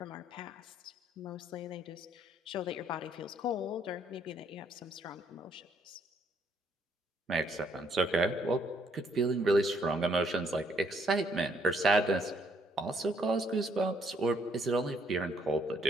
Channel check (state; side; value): normal; both; correlation 0.68